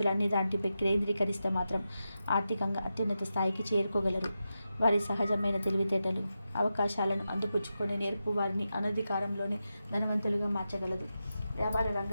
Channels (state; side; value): inverted; both; correlation -0.90